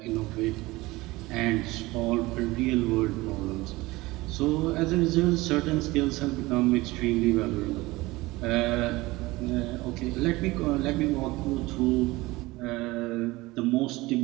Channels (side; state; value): left; quieter; 20.5 dB